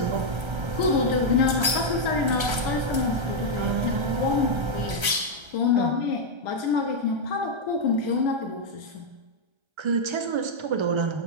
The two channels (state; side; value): late; left; 1.3 ms